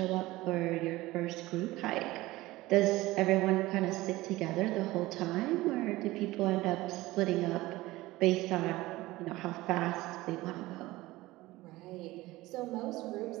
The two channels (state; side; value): quieter; left; 18.7 dB